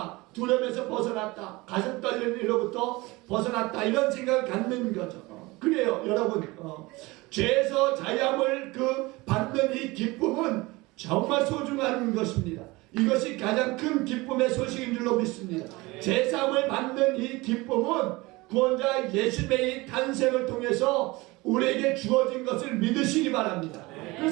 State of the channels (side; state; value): left; quieter; 22.3 dB